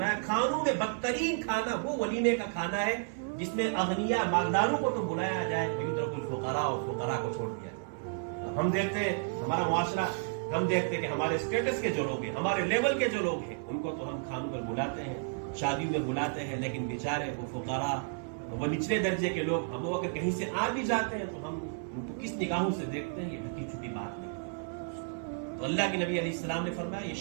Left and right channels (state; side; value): silent; left; 56 dB below the other